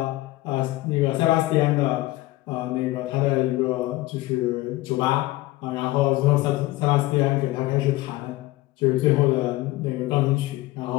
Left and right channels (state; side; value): quieter; right; 18.4 dB